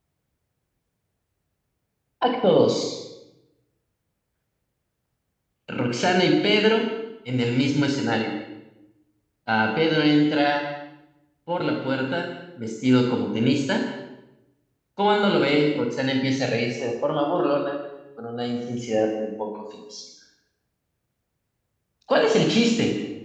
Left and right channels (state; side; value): identical; both; correlation 1.00